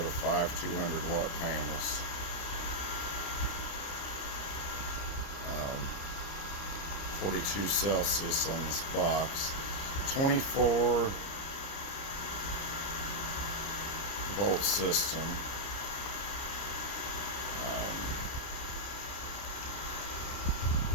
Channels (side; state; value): right; late; 30 ms